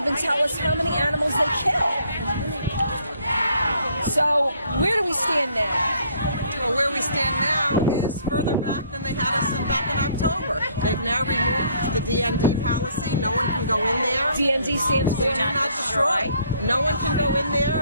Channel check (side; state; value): both; inverted; correlation -0.63